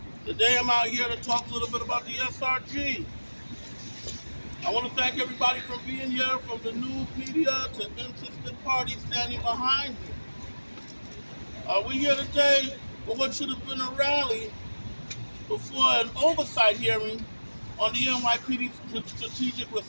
Today I'm out here to talk a little bit about the SRG. I want to thank everybody for being here, from the news media to interested parties standing behind me. We're here today for what should have been a rally before an oversight hearing on the NYPD Strategic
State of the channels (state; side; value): inverted; both; correlation -1.00